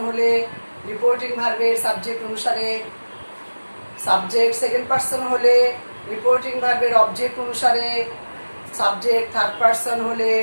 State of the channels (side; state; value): both; inverted; correlation -1.00